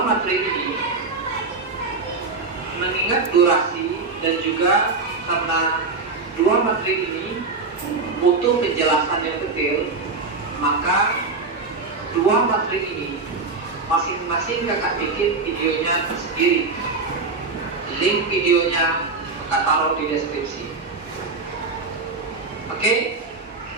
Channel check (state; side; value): quieter; left; 4.0 dB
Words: materi ini mengingat durasi dan juga karena dua materi ini butuh penjelasan yang detail, maka dua materi ini masing-masing kakak bikin videonya tersendiri. Link videonya kakak taruh di deskripsi. Oke,